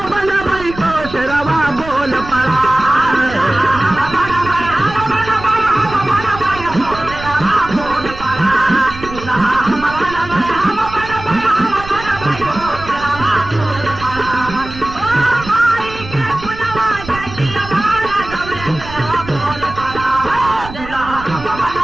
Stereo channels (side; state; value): right; noise; rumble, 13 dB below the sound